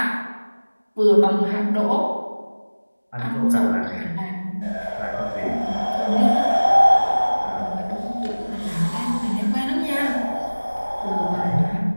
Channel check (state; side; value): inverted; both; correlation -1.00